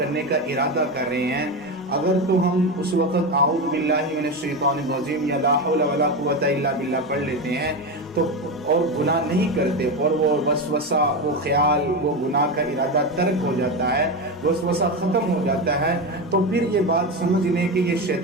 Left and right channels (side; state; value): both; normal; correlation 0.17